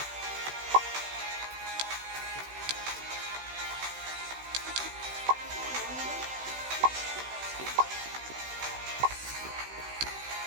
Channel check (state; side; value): late; left; 16 ms